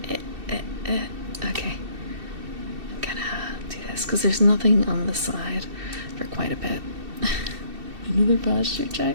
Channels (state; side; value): late; left; 2.7 ms